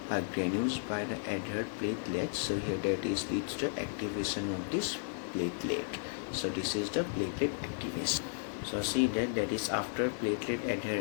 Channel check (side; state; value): right; silent; digital silence